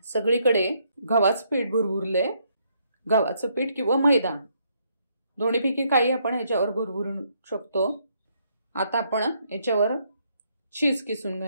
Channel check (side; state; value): both; inverted; correlation -0.72